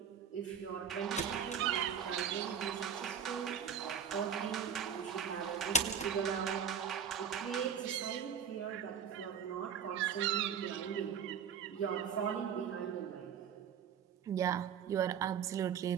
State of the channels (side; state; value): left; quieter; 7.6 dB